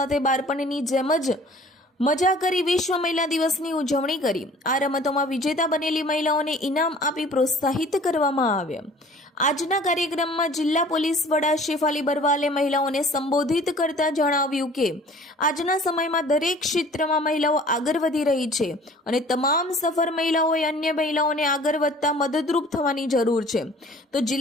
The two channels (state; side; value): normal; both; correlation 0.50